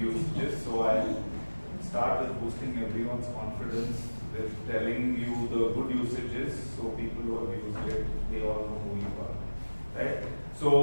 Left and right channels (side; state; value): both; inverted; correlation -1.00